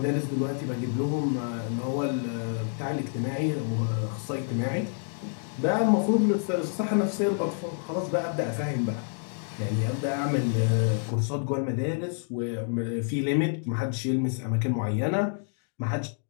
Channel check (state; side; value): silent; right; 59 dB below the other